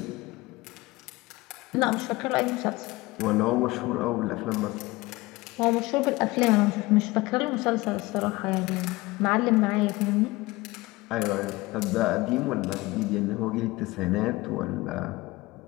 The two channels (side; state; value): right; quieter; 20.8 dB